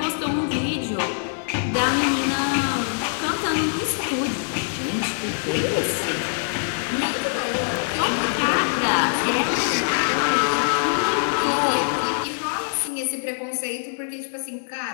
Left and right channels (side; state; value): right; silent; 63 dB below the other